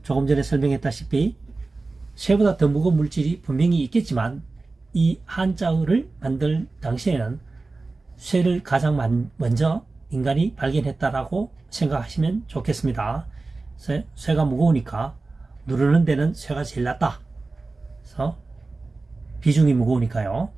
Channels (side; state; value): left; quieter; 3.5 dB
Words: 조금 전에 설명했다시피 쇠보다 더 무거운 물질이 분명히 있겠지만 이 한자어를 만들 당시에는 쇠를 가장 먼저 인간이 발견했다라고 생각하시면 좋겠습니다. 쇠가 무거우니까 누르는 데는 쇠가 제일 낫다. 그래서 비중이 무거우니까요.